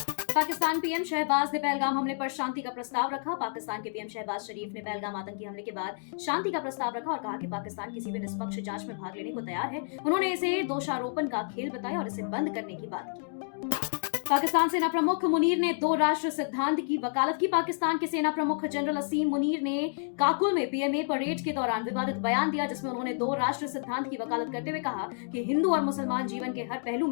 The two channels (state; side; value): silent; right; digital silence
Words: पाकिस्तान पीएम शहबाज ने पहलगाम हमले पर शांति का प्रस्ताव रखा। पाकिस्तान के पीएम शहबाज शरीफ ने पहलगाम आतंकी हमले के बाद शांति का प्रस्ताव रखा और कहा कि पाकिस्तान किसी भी निष्पक्ष जांच में भाग लेने को तैयार है। उन्होंने इसे दोषारोपण का खेल बताया और इसे बंद करने की बात की। पाकिस्तान सेना प्रमुख मुनीर ने 2 राष्ट्र सिद्धांत की वकालत की। पाकिस्तान के सेना प्रमुख जनरल असीम मुनीर ने काकुल में पीएमए परेड के दौरान विवादित बयान दिया, जिसमें उन्होंने 2 राष्ट्र सिद्धांत की वकालत करते हुए कहा कि हिंदू और मुसलमान जीवन के हर पहलू